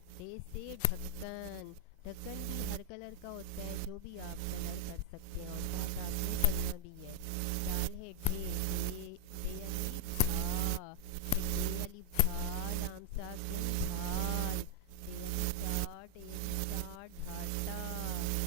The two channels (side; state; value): both; different; correlation 0.00